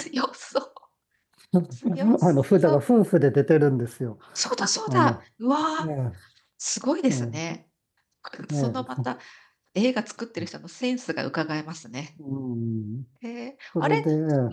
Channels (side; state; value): both; identical; correlation 1.00